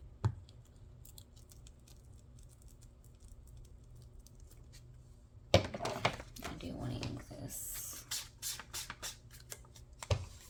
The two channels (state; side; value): identical; both; correlation 1.00